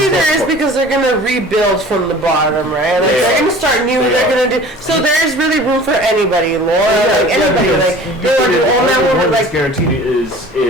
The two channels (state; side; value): normal; both; correlation 0.44